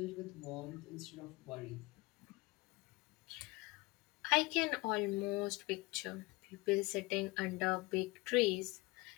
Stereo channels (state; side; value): quieter; right; 23.5 dB